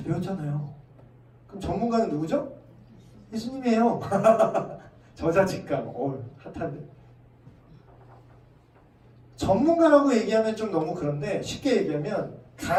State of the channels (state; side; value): identical; both; correlation 1.00